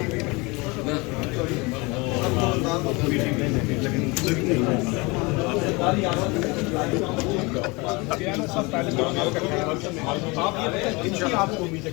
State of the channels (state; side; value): quieter; right; 26.0 dB